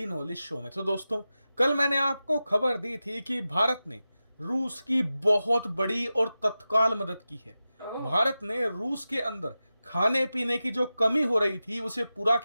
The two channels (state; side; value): inverted; both; correlation -0.93